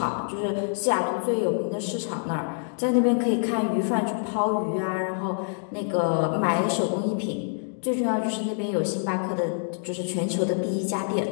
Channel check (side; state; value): right; silent; digital silence